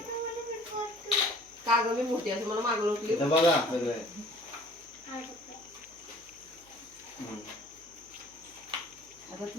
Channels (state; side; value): noise; right; hum, 27 dB below the sound